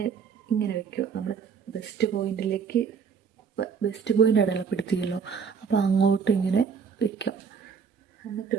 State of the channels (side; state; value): left; quieter; 6.3 dB